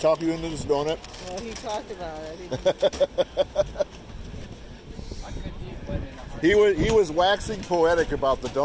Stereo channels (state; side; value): identical; both; correlation 1.00